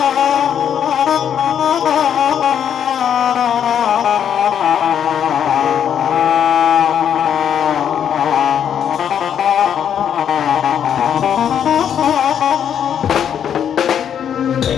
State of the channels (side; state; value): right; quieter; 8.8 dB